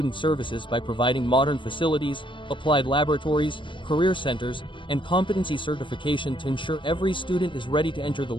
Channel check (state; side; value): late; right; 0.24 ms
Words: services by providing modern facilities, applied laboratories, career centers, and competency certification to ensure every student is ready to enter the